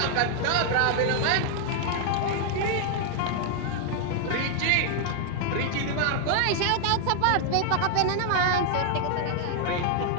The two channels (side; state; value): both; different; correlation 0.00